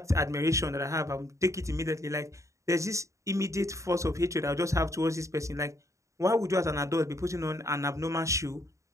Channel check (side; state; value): left; late; 0.15 ms